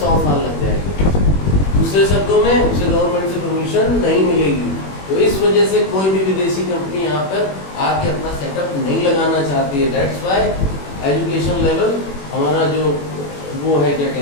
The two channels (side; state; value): right; late; 21 ms